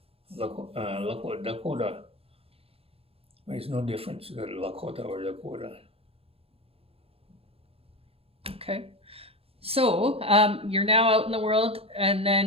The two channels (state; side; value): late; left; 0.28 ms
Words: Dakota. There's no difference, Lakota or Dakota. Okay. So you're now out in the world, and